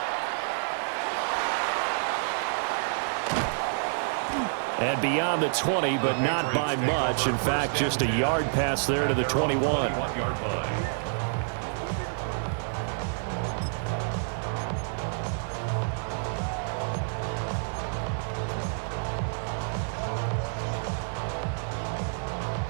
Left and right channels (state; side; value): silent; left; 55 dB below the other